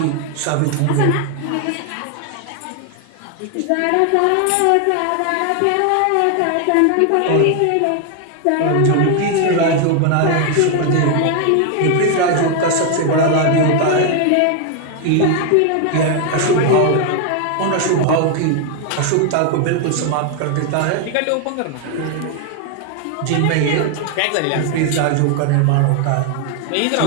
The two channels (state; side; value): different; both; correlation 0.00